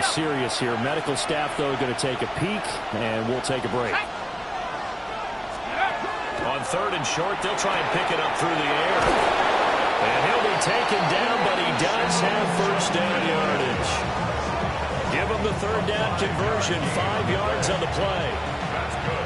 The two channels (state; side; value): identical; both; correlation 1.00